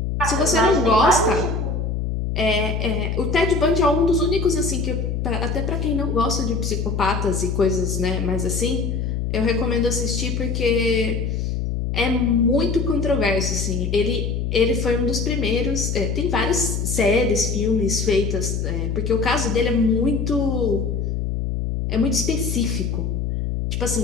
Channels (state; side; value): noise; left; hum, 1 dB below the sound